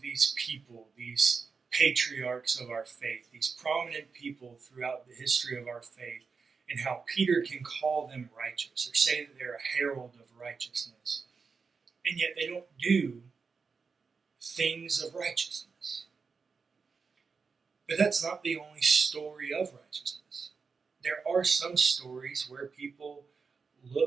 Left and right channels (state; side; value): quieter; left; 5.1 dB